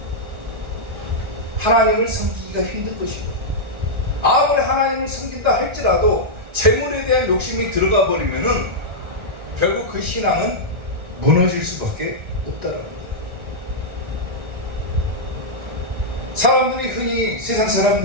하나님을 섬기기가 힘든 것이고, 아무리 하나님을 섬긴다 할지라도 재물에 대한 욕심이 들어가 버리면은 결국 그 신앙은 무너질 수밖에 없다는 거예요. 사람들이 흔히, 세상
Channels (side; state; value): left; late; 1.4 ms